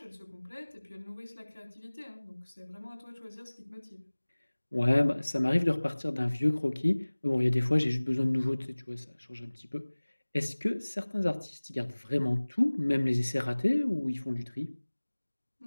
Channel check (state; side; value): inverted; both; correlation -1.00